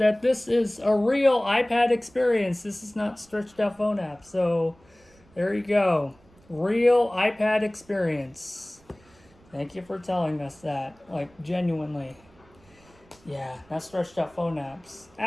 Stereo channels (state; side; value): noise; right; rumble, 29 dB below the sound